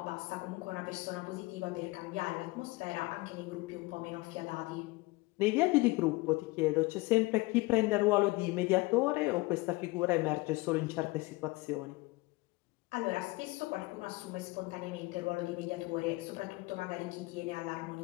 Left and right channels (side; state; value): right; quieter; 22.6 dB